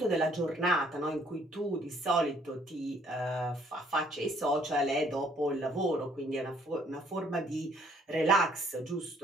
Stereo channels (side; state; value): both; normal; correlation 0.63